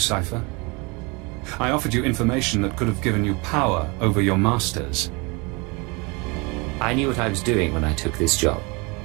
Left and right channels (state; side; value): quieter; left; 28.3 dB